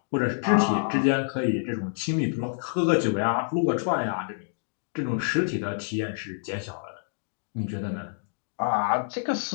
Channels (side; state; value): right; silent; digital silence